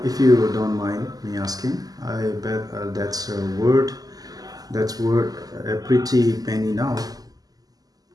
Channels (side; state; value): left; late; 0.18 ms